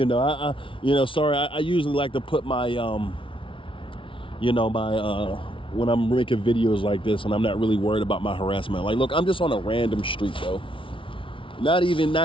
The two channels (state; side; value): late; right; 0.25 ms